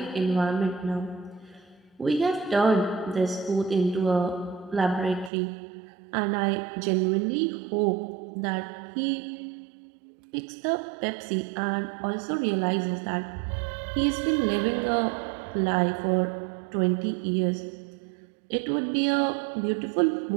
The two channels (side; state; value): left; drops out; at 5.3 s